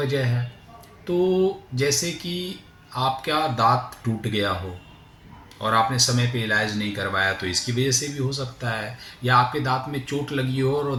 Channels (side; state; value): both; identical; correlation 1.00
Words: है। तो जैसे कि आपका दांत टूट गया हो और आपने समय पे इलाज नहीं करवाया, तो इसकी वजह से भी हो सकता है। या आपके दांत में चोट लगी हो और